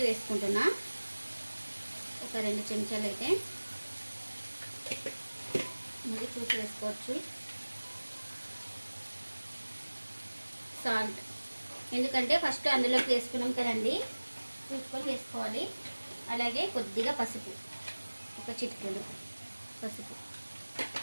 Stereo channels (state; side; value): inverted; both; correlation -1.00